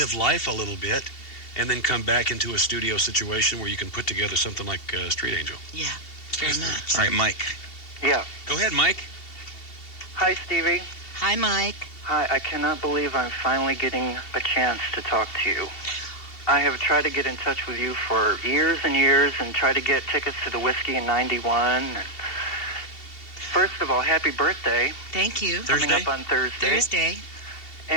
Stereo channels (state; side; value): late; right; 2.7 ms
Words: life a little bit, and then come back into a studio situation where you can put together something like Street Angel. Yeah, very much. All right, Mike. Yeah. Go ahead, Mike. Hi, Stevie. Hi, Mike. Hi, I cannot believe I'm finally getting a chance to talk to you. I have tried to get in touch with you for years and years and tried to get tickets to the Whiskey in 91. First of all, happy birthday. Thank you. Coming up on Thursday.